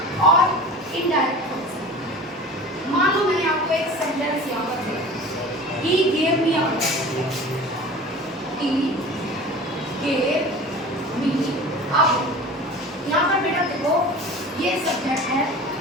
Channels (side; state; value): both; normal; correlation 0.38